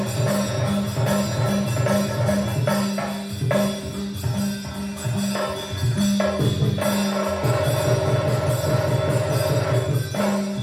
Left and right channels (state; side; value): identical; both; correlation 1.00